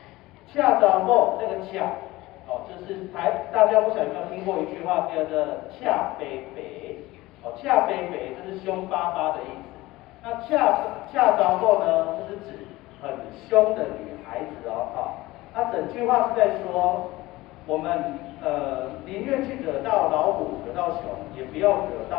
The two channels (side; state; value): right; quieter; 19.0 dB